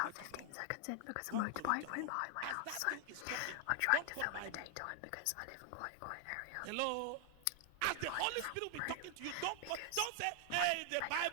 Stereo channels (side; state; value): both; different; correlation 0.00